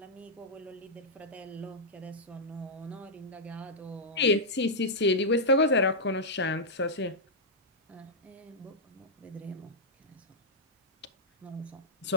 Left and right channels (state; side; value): normal; both; correlation -0.07